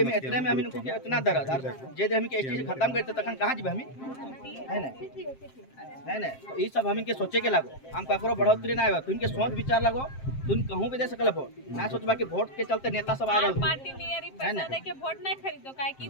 इतने में हमिन को इतना दर्द और जे हमिन के एसटी से खत्म करते तखन कहां जेबे हमिन है ना तो ई सब हमिन के सोचे के लागो हम ककरो बढ़ोतरी ना आवे तुम के सोच विचार लगो तुम कहूं भी दे सकल वोट ना सोचबा कि वोट के चलते नेता सब आ रहल पार्टी नियरी पैसा दे के वोट नहीं खरीदो काहे कि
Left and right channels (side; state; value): right; late; 7.6 ms